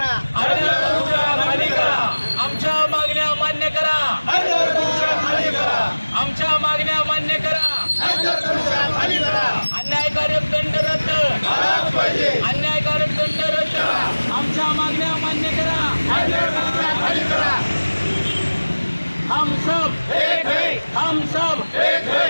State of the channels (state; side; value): inverted; both; correlation -1.00